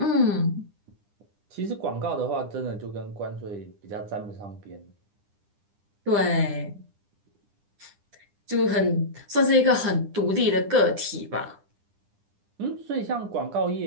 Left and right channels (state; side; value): late; left; 9.9 ms